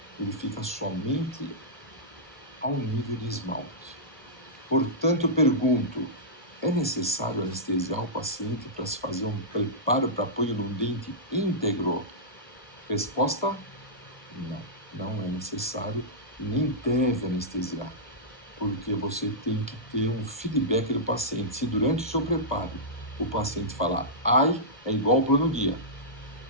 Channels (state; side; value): normal; both; correlation -0.14